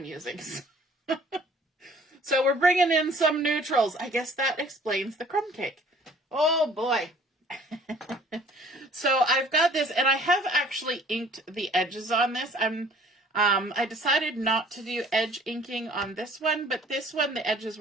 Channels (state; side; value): normal; both; correlation 0.54